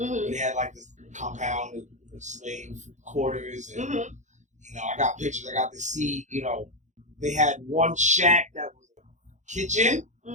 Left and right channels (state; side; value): late; left; 0.35 ms